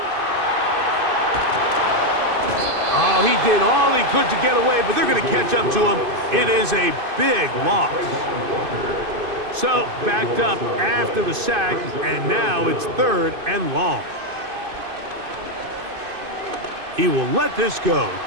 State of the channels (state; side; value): late; left; 2.5 ms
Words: Oh, he did all he could to get away, but they're going to catch up to him. It is a big loss. So, backed up after the sack, and now it's third and long. He will let this go.